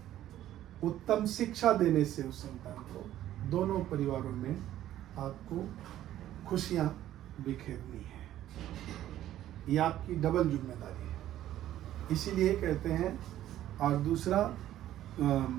उत्तम शिक्षा देने से उस संतान को, दोनों परिवारों में आपको खुशियां बिखेरनी है। ये आपकी डबल जिम्मेदारी है। इसीलिए कहते हैं। और दूसरा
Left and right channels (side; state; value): left; quieter; 12.8 dB